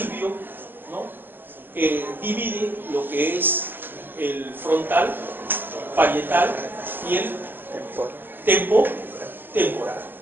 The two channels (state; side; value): late; left; 0.098 ms